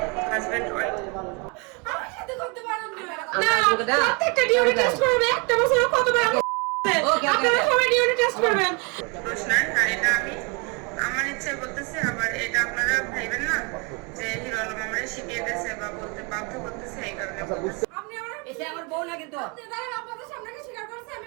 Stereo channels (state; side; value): quieter; left; 31.8 dB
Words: হাজব্যান্ড ওয়াইফ। আমার সাথে করতে পারেন না, প্রত্যেকটা ডিউটি টেস্ট করবে, একটা বছরে কতবার আপনারা সবাই ডিউটি টেস্ট করবেন। দোষ নাই, আর এটা আমি আমার ইচ্ছায় বলতেছি, আবার এটা আপনারা ভাইবেন না যে হিরো আলম আমারে শিখিয়ে দিয়েছে বা বলতে বাধ্য করতেছে, এই কারণে বলতেছি। আপনি আমার এসে আমার বউ না কিন্তু। আপনি দাঁড়ান, আপনাদের সামনে কি স্বীকার করছে আমি